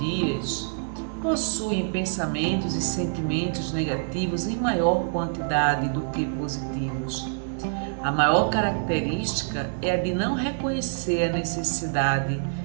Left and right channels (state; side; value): silent; left; digital silence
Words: possuem pensamentos e sentimentos negativos em maior quantidade do que positivos. A maior característica é a de não reconhecer a necessidade